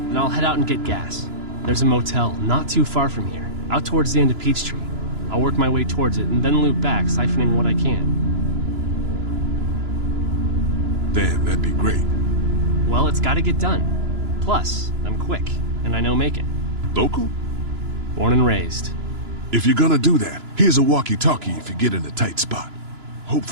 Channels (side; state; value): left; late; 2.9 ms